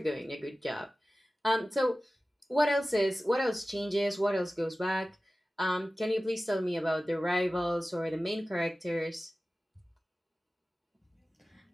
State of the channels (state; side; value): normal; both; correlation 0.96